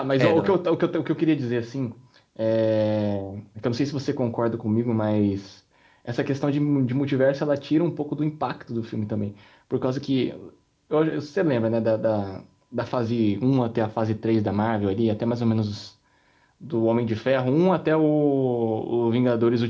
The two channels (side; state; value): both; identical; correlation 1.00